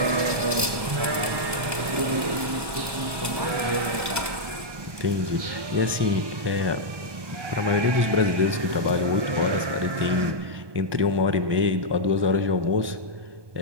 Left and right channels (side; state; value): left; late; 1.2 ms